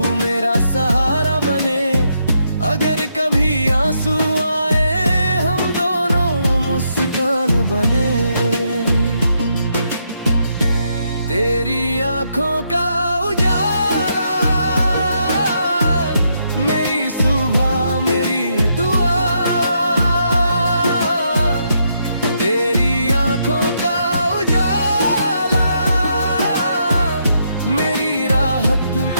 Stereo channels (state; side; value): inverted; both; correlation -0.77